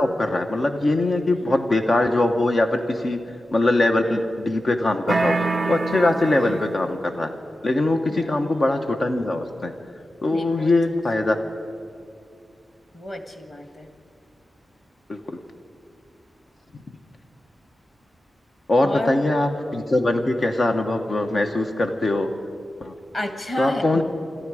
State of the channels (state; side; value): normal; both; correlation 0.92